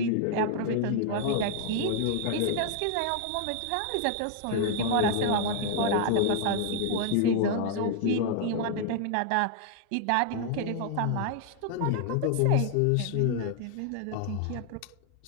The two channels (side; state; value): both; different; correlation 0.00